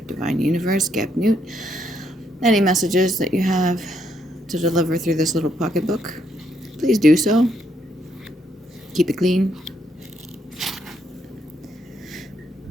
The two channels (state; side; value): normal; both; correlation 0.75